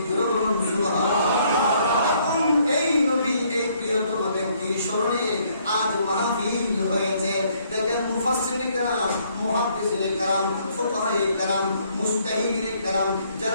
সুবহানাল্লাহ। এই নবী, এই প্রিয়তম ব্যক্তির স্মরণে আজ মাহফিল হয়েছে। দেখেন মুফাসসিরিনে কেরাম, মুহাদ্দিসিনে কেরাম, ফুকাহায়ে কেরাম, মুজতাহিদিনে কেরাম,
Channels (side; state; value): both; inverted; correlation -0.67